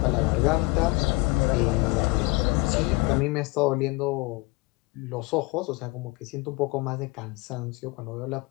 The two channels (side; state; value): right; quieter; 24.7 dB